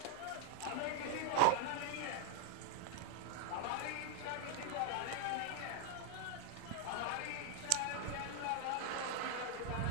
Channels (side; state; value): both; different; correlation 0.00